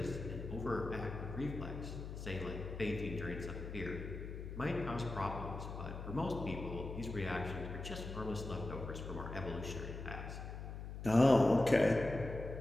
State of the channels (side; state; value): left; noise; hum, 8 dB below the sound